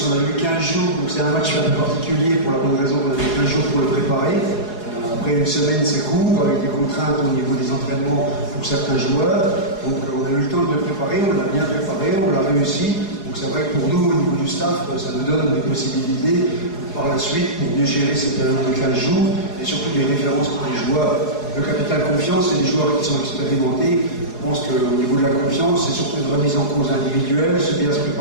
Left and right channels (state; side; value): late; right; 4.8 ms